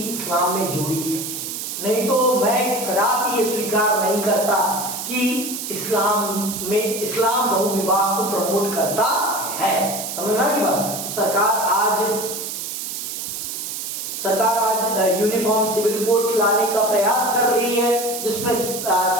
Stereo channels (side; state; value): right; noise; hiss, 6 dB below the sound